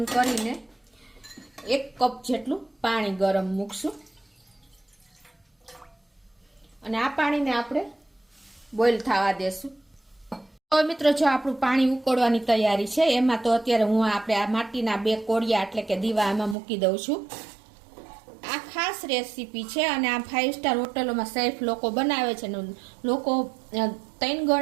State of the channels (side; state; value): left; drops out; at 16.6 s